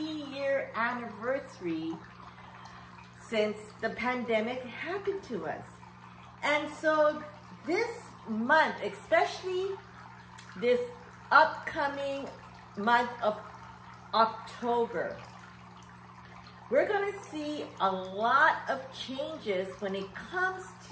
anniversary since the pandemic happened to us. And so this month, especially this upcoming month of October, we're going to see a lot of changes when it comes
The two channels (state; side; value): identical; both; correlation 1.00